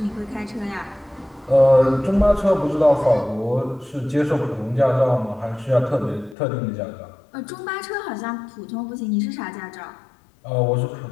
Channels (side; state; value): right; drops out; at 6.4 s